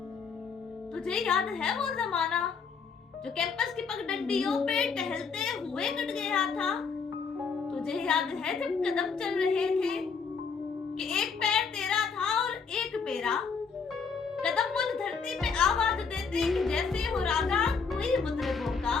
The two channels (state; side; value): quieter; right; 5.4 dB